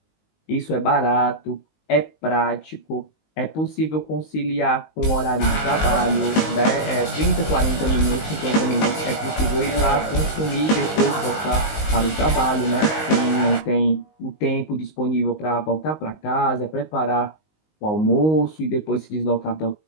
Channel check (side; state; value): right; late; 19 ms